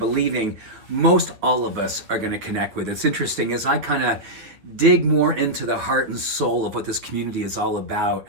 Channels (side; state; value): left; late; 9.2 ms